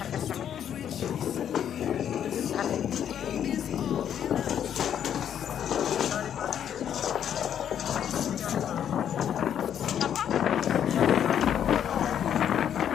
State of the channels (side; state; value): right; quieter; 9.3 dB